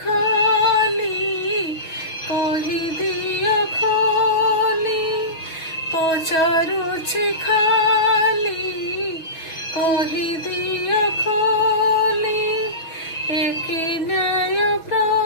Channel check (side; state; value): right; late; 6.2 ms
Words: कहि दियो खोली पचारुछि खाली कहि दियो खोली एक न्याय